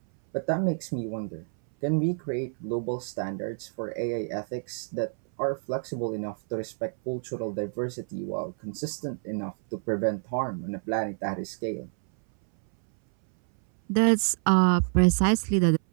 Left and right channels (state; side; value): silent; left; 59 dB below the other